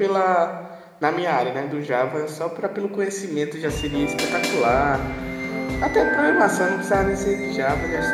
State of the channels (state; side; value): identical; both; correlation 1.00